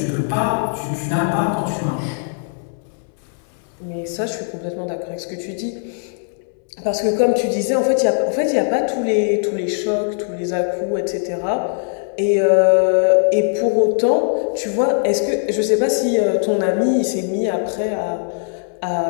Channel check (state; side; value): silent; right; digital silence